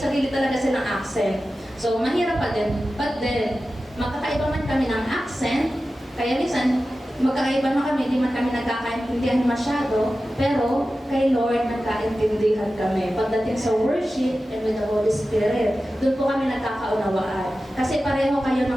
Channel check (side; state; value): both; normal; correlation 0.94